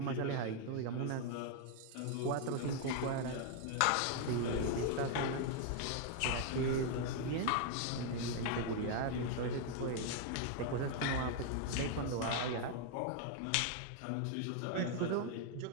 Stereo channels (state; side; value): different; both; correlation 0.00